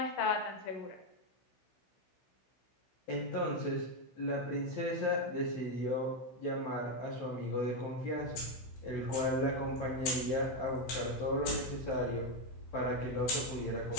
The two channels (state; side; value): late; right; 16 ms